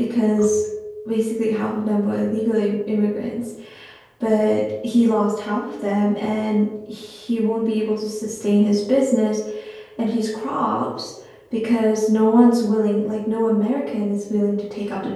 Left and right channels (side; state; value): both; identical; correlation 1.00